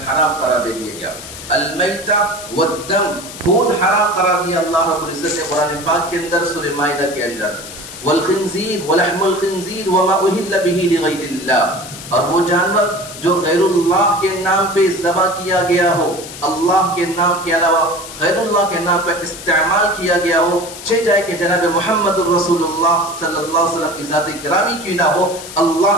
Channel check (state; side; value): noise; left; hiss, 13 dB below the sound